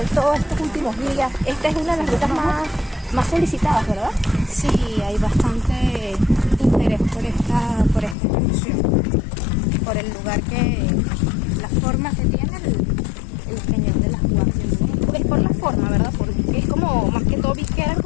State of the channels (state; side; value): drops out; right; at 8.2 s